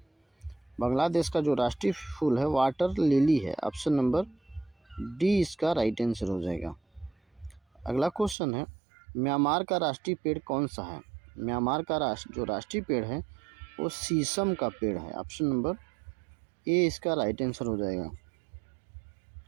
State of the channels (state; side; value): drops out; left; at 8.3 s